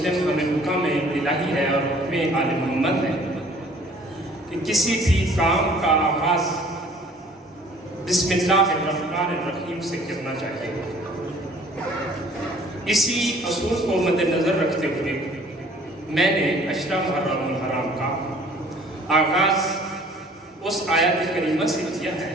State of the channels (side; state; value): both; normal; correlation 0.54